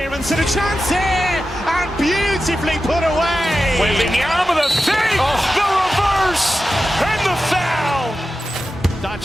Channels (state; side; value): normal; both; correlation 0.92